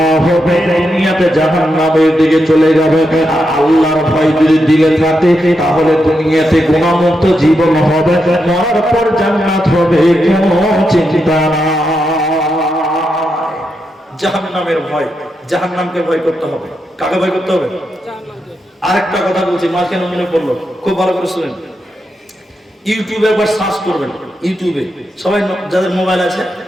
হবে, দুনিয়াতে জাহান্নামের দিকে চলে যাবে। আর আল্লাহর ভয় যদি দিলে থাকে তাহলে দুনিয়াতে গুনাহমুক্ত জীবন হবে, মরার পর জান্নাত হবে, কোনো চিন্তা নাই। জাহান্নামের ভয়, জাহান্নামকে ভয় করতে হবে। কাকে ভয় করতে হবে? আরেকটা কথা বলছি, মা কেন মনে পড়লো, খুব ভালো করে শুনেন। ইউটিউবে একবার সার্চ করবেন, ইউটিউবে সবাই যাদের মোবাইল আছে,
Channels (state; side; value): normal; both; correlation 0.85